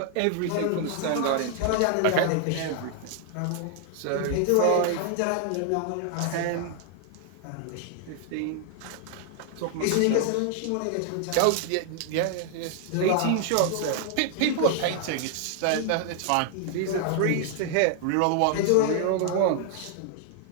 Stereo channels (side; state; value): both; different; correlation 0.00